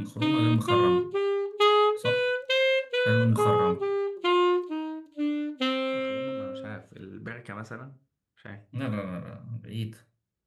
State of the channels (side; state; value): both; identical; correlation 1.00